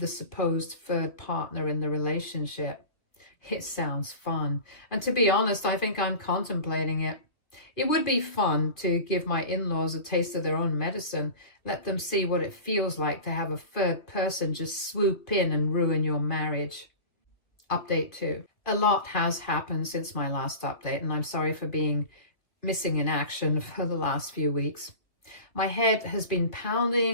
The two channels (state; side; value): late; right; 2.5 ms